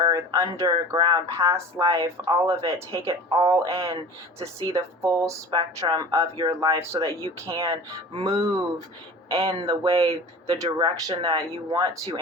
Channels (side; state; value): both; normal; correlation 0.38